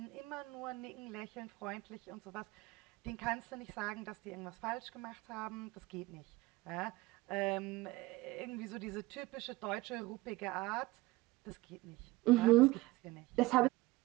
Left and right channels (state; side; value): quieter; left; 20.0 dB